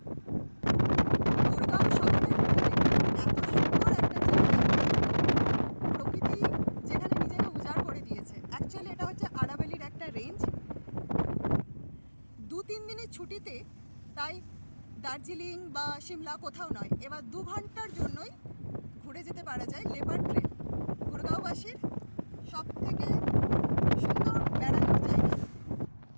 গুড়গাঁও শহরের এত সুন্দর একটা জায়গা, প্রকৃতি যেখানে নিজেকে উজাড় করে দিয়েছে। অ্যাকচুয়ালি এটা হচ্ছে আরাবল্লীর একটা রেঞ্জ। 2-3 দিনের ছুটিতে তাই দার্জিলিং বা সিমলা কোথাও নয়, এবার 2 ঘন্টার জন্যই ঘুরে যেতে পারা যায় লেপার্ড ট্রেল। গুড়গাঁওবাসীর সব থেকে সুন্দর বেড়ানোর জায়গা।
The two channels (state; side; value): inverted; both; correlation -1.00